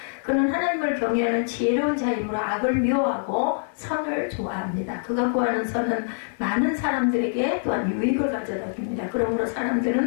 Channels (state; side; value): silent; right; digital silence